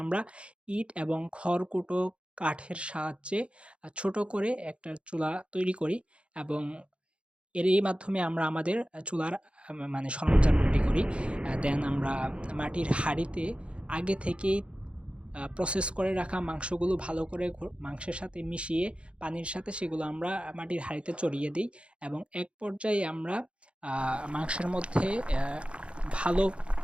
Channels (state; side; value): late; left; 0.059 ms